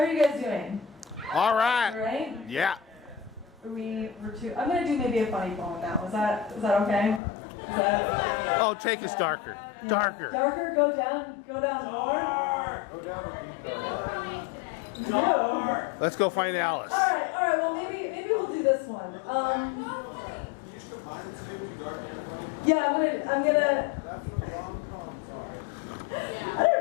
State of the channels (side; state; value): right; drops out; at 7.2 s